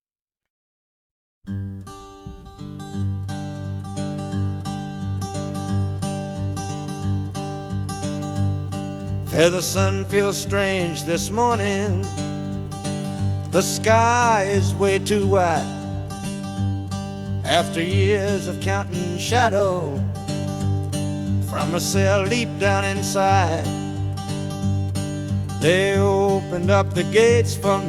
Yeah, the sun feels strange this morning. The sky is way too wide. After years of counting shadow from a cell deep down inside, they opened up the gates for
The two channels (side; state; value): both; identical; correlation 1.00